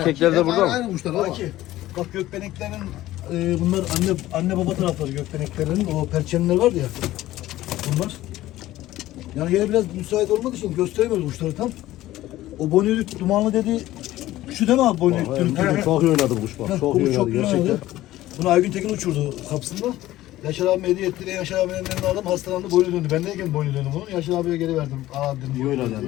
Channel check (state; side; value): quieter; right; 15.5 dB